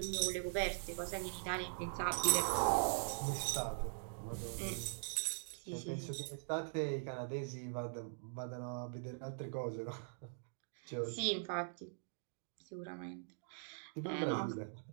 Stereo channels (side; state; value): left; silent; digital silence